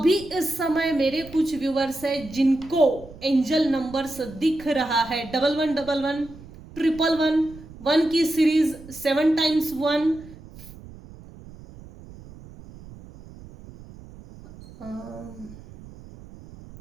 इस समय मेरे कुछ व्यूअर्स हैं जिनको एंजल नंबर्स दिख रहा है, 1111, 111, 1 की सीरीज, 7 टाइम्स 1।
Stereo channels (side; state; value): right; noise; rumble, 18 dB below the sound